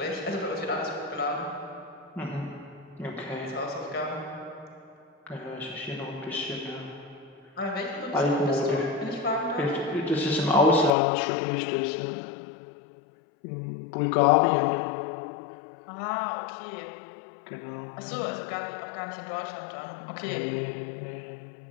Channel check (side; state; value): right; drops out; at 11.0 s